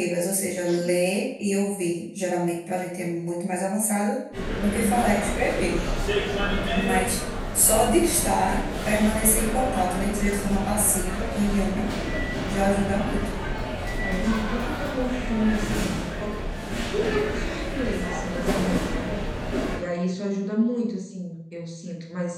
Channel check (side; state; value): both; identical; correlation 1.00